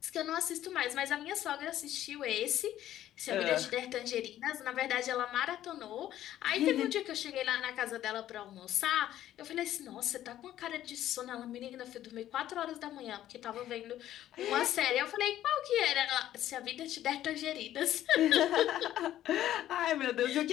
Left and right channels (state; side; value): quieter; right; 12.6 dB